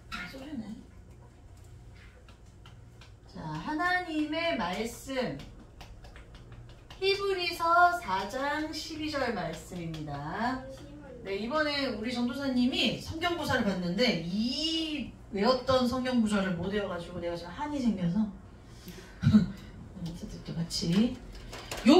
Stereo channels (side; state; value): both; identical; correlation 1.00